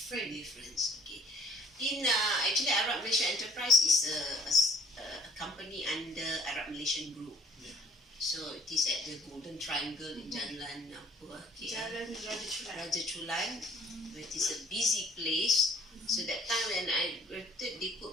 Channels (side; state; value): both; normal; correlation 0.56